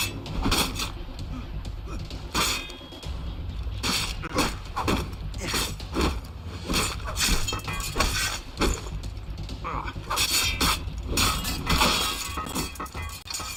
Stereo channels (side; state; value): both; identical; correlation 1.00